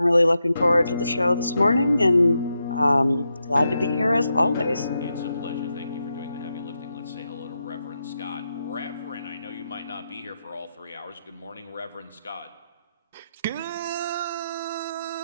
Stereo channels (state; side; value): inverted; both; correlation -0.85